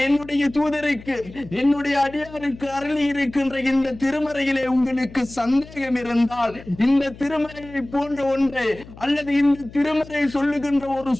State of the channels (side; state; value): left; noise; hum, 18 dB below the sound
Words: என்னுடைய தூதருக்கு, என்னுடைய அடியாருக்கு அருளி இருக்கின்ற இந்த திருமறையிலே உங்களுக்கு சந்தேகம் இருந்தால், இந்த திருமறையை போன்ற ஒன்றை அல்லது இந்த திருமறை சொல்லுகின்ற ஒரு